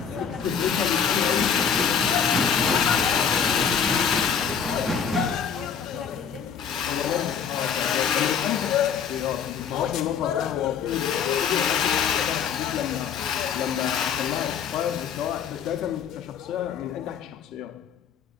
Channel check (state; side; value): quieter; right; 7.3 dB